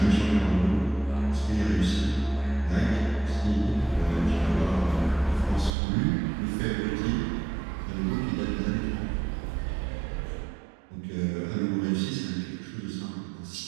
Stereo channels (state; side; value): drops out; left; at 5.7 s